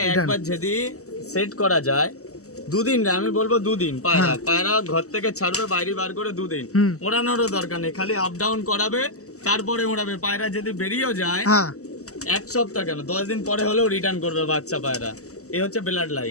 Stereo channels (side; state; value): right; late; 0.65 ms